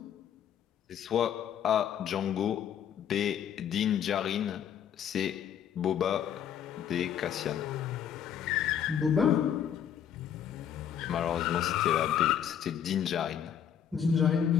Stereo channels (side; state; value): right; quieter; 9.0 dB